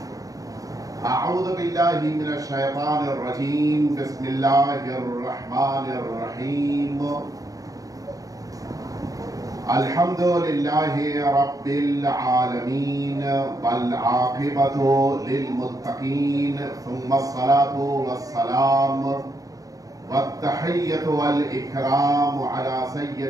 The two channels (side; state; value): left; late; 0.17 ms